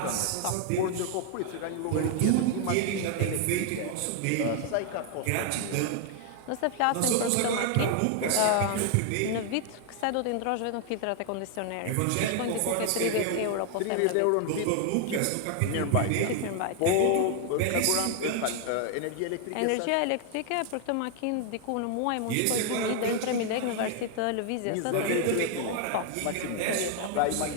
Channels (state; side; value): different; both; correlation 0.00